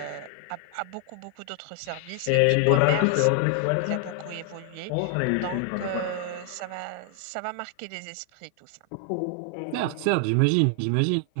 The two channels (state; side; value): different; both; correlation 0.00